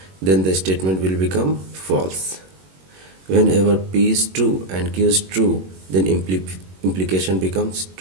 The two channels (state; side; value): late; left; 21 ms